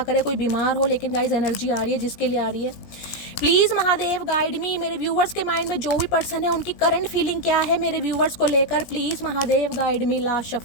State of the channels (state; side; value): late; right; 17 ms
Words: करे कोई बीमार हो, लेकिन गाइस एनर्जी आ रही है जिसके लिए आ रही है। Please Mahadev guide me. मेरे व्यूवर्स के माइंड में जो भी पर्सन है उनकी करंट फीलिंग क्या है मेरे व्यूवर्स को लेकर, please Mahadev guide me. Last